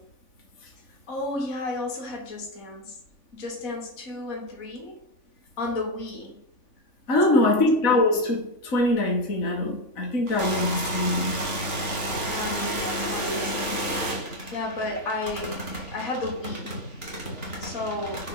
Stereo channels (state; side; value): late; right; 3.5 ms